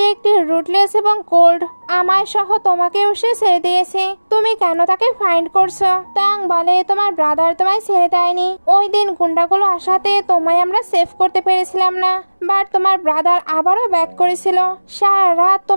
একটি রুটলেস এবং কোল্ড, আমায় সহ তোমাকেও সে ছেড়ে দিয়েছে, তুমি কেন তাকে ফাইন্ড করছো? তং বলে তোমার ব্রাদার তোমায় ছেড়ে দেয়নি, ওই দিন গুন্ডাগুলো আসাতে তোমায় আমরা সেভ করতে পেরেছিলাম না, বাট তোমার ব্রাদার আবারও ব্যাক করেছিল, সারা রাত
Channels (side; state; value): both; inverted; correlation -1.00